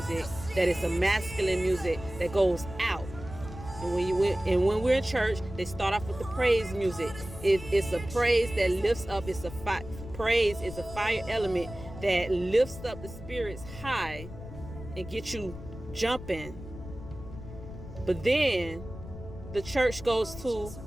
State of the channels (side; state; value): left; noise; rumble, 13 dB below the sound